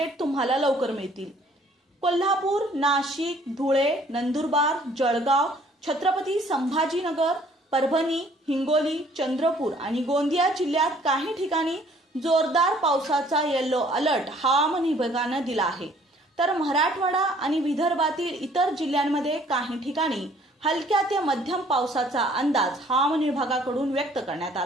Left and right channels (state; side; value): normal; both; correlation 0.59